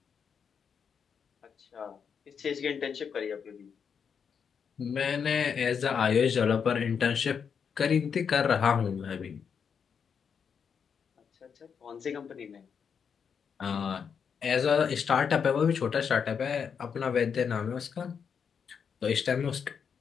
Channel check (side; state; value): right; quieter; 6.8 dB